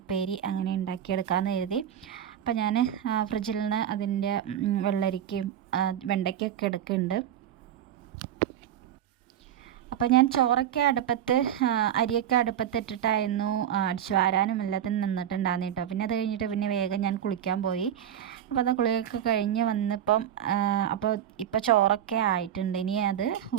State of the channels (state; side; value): quieter; left; 10.2 dB